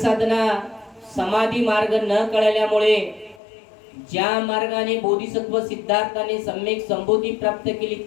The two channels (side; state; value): right; drops out; at 3.4 s